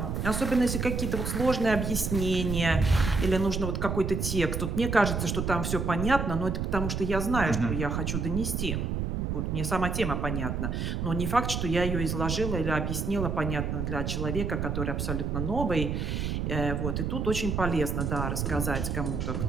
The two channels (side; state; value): right; noise; rumble, 1 dB below the sound